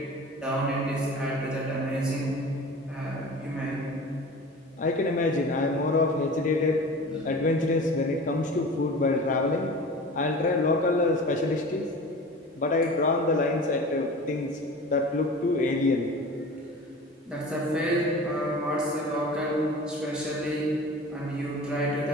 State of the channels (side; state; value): both; normal; correlation 0.37